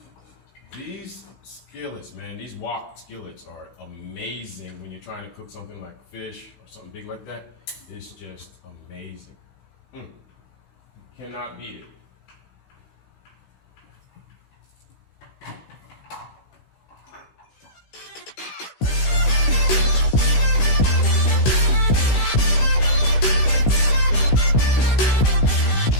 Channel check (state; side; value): late; right; 16 ms